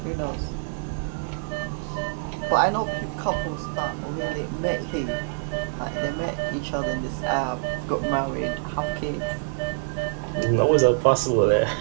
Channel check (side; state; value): left; silent; digital silence